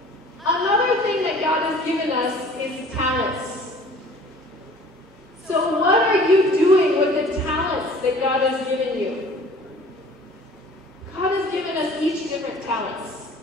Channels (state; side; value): normal; both; correlation 0.49